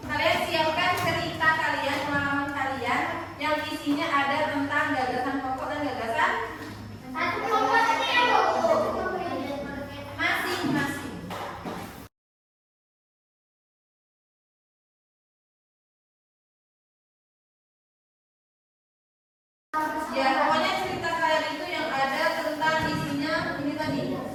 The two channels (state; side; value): identical; both; correlation 1.00